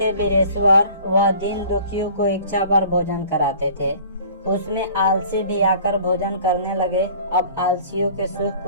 वीरेश्वर, वह दीन दुखियों को इच्छा पर भोजन कराते थे। उसमें आलसी भी आकर भोजन करने लगे। अब आलसियों के सुख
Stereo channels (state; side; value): inverted; both; correlation -0.48